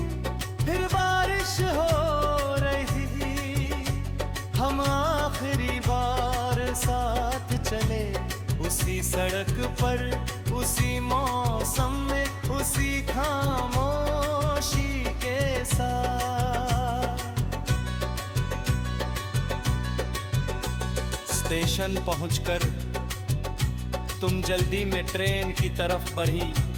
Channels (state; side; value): identical; both; correlation 1.00